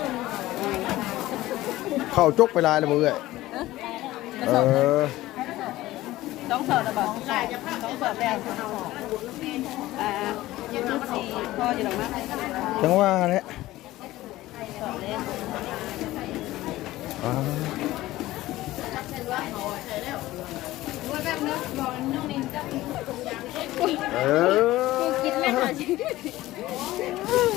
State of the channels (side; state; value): right; quieter; 16.7 dB